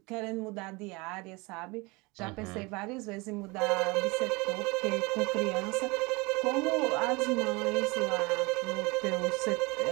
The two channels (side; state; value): left; quieter; 25.5 dB